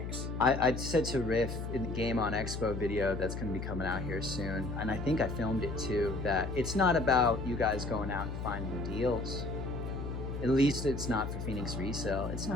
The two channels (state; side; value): noise; left; hum, 5 dB below the sound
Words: I said to Riff in the Game on Expo video that's going to be coming out here soon, and I think I filmed it too, that it's not about you guys going out and finding deals. At least it's not for Phoenix Resale. It's